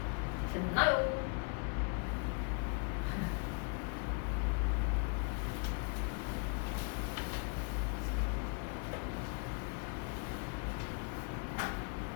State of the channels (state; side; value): quieter; right; 38.2 dB